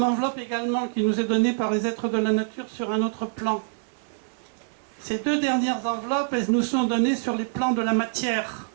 enveloppe également qui nous est donnée par les êtres de la nature sur un autre plan. Ces deux dernières enveloppes, elles nous sont données sur les plans de la matière,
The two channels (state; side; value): silent; left; digital silence